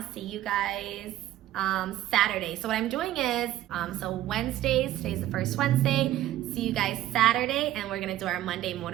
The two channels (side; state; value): left; quieter; 13.7 dB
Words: see you guys Saturday. So what I'm doing is, so Wednesdays, today's the first Wednesday, see you guys Saturday, and we're gonna do our Monday